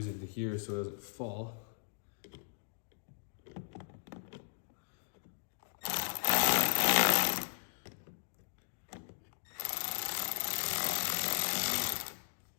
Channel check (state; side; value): silent; right; digital silence